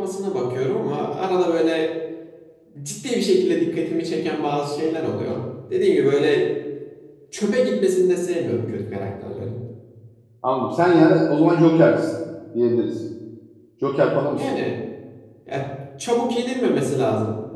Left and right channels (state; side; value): identical; both; correlation 1.00